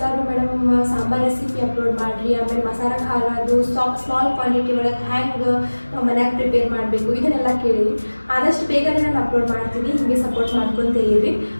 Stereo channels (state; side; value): inverted; both; correlation -1.00